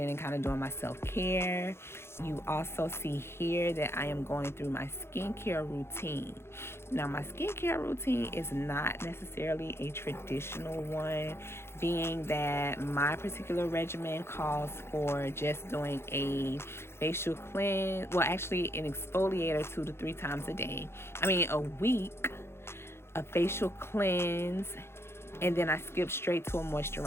and kind of doing my self-care. You also see here that I am going through my skincare routine. Now, my skincare routine is not necessarily a traditional one, being that my particular regimen calls for just doing a facial cleanse, well, actually an exfoliator 2 to 3 times a week, a facial cleanse, and then I skip straight to a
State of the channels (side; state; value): right; late; 0.12 ms